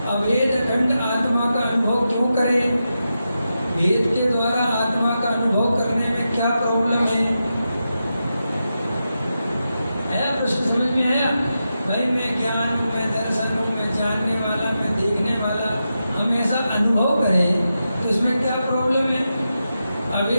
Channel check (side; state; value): both; inverted; correlation -0.89